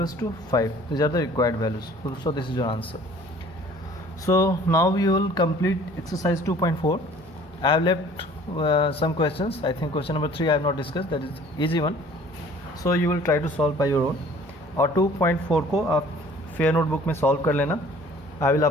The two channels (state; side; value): normal; both; correlation 0.51